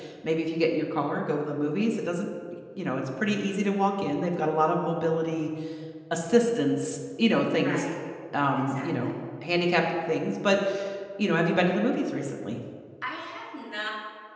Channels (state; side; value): identical; both; correlation 1.00